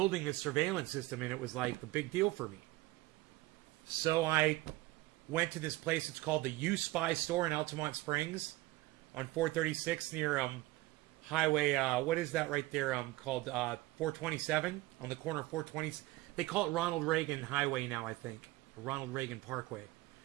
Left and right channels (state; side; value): quieter; left; 19.2 dB